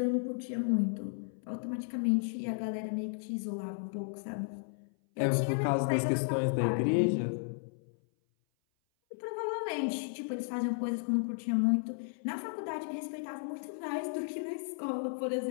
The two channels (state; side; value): silent; right; 55 dB below the other